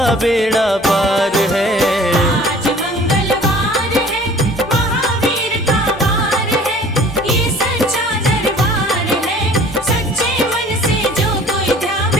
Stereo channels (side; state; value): both; normal; correlation 0.49